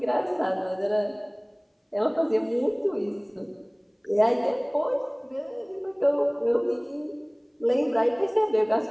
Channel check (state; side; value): identical; both; correlation 1.00